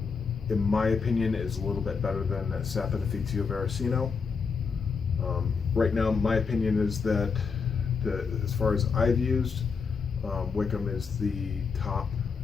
in my opinion is a little bit better than Saponificio Veracino. Right now, my opinion is that as far as I've used, Wickham is the top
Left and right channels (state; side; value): quieter; right; 5.4 dB